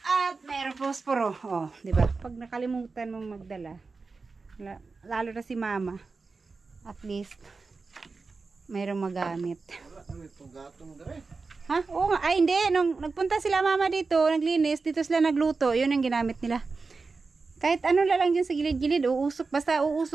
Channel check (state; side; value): quieter; left; 4.2 dB